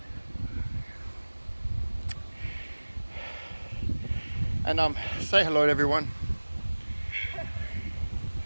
And say hello to everyone.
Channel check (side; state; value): both; inverted; correlation -1.00